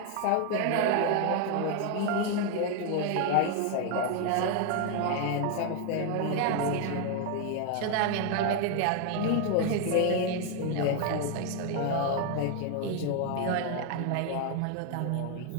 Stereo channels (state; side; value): different; both; correlation 0.01